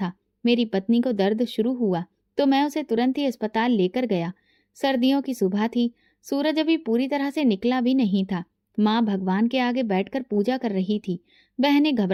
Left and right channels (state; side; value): identical; both; correlation 1.00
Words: मेरी पत्नी को दर्द शुरू हुआ तो मैं उसे तुरंत ही अस्पताल लेकर गया। सर्दियों की सुबह थी। सूरज अभी पूरी तरह से निकला भी नहीं था। माँ भगवान के आगे बैठकर पूजा कर रही थी। बहनें